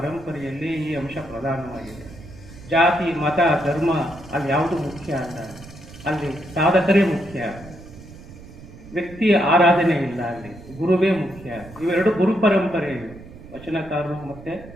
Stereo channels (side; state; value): right; noise; rumble, 18 dB below the sound